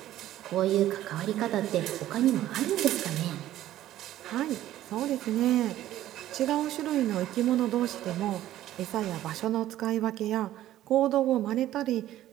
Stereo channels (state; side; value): quieter; left; 13.5 dB